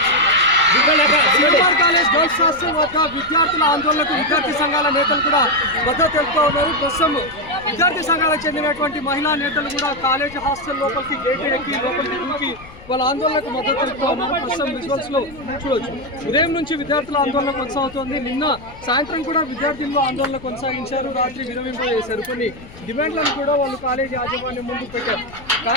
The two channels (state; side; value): noise; left; rumble, 20 dB below the sound